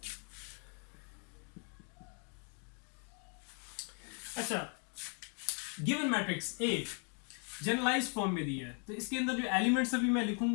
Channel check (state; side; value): quieter; right; 39.6 dB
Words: अच्छा, given matrix A generalised form में दिया है, तो इसके अंदर जो एलिमेंट्स अभी मैं